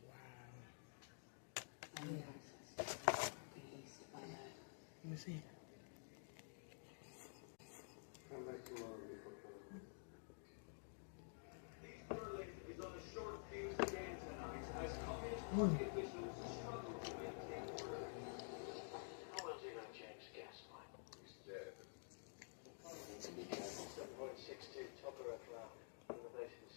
Wow. I need access to the east if I know. Let me see. Come back tomorrow before coming. Berlin is on a short fuse again tonight as Communist Party officials struggle to maintain order. How well do you know James Gaslight? He's dead. 7.62 Tokarev round.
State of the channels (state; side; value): silent; right; digital silence